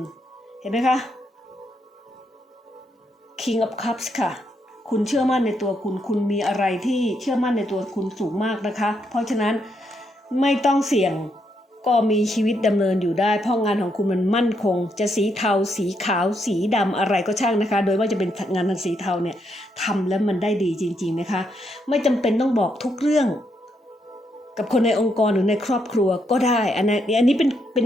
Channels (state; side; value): normal; both; correlation 0.78